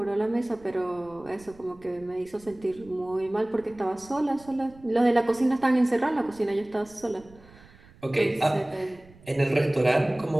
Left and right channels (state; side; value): noise; right; rumble, 24 dB below the sound